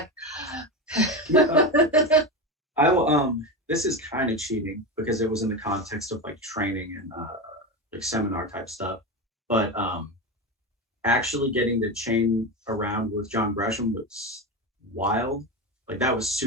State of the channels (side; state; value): both; normal; correlation 0.19